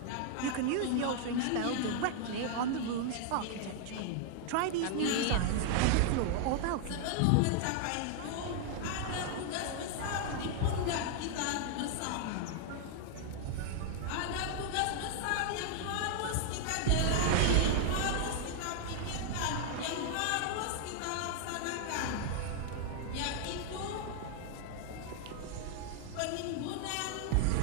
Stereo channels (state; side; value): different; both; correlation 0.00